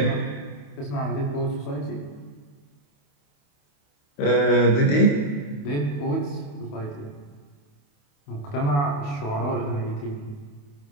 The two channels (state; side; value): late; right; 28 ms